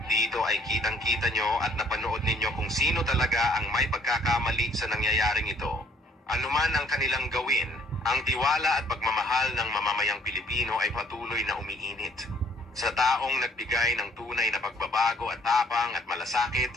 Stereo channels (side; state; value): both; normal; correlation 0.62